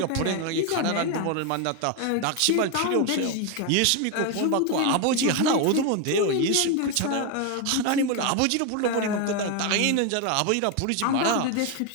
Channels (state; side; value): different; both; correlation 0.01